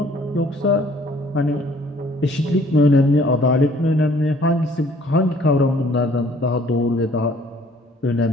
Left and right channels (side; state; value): both; normal; correlation 0.58